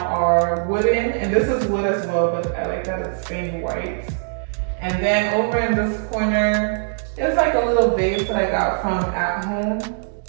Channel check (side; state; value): left; silent; digital silence